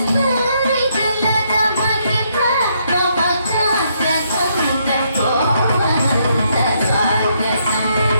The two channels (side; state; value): both; inverted; correlation -0.74